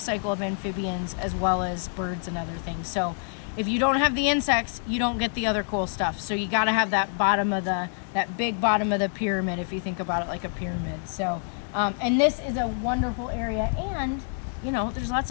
cycle of amphibians as well as birds and other things. So if you don't have the insects, you don't get the other cool stuff. So you got to have that big bottom of the pyramid, if you think about it like a pyramid. So, and this is a wonderful area, and you know, there's lots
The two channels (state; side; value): silent; right; 60 dB below the other